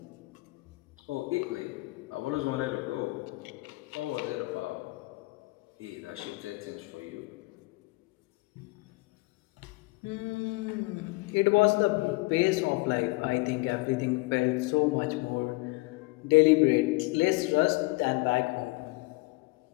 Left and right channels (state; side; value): quieter; right; 24.4 dB